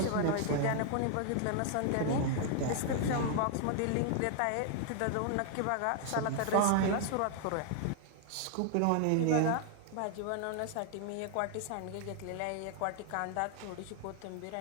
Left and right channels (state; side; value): different; both; correlation 0.00